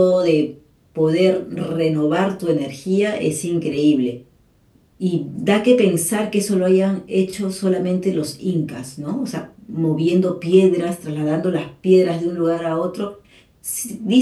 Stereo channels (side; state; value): both; identical; correlation 1.00